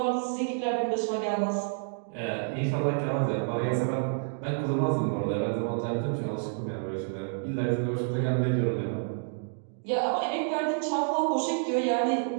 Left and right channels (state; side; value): silent; left; digital silence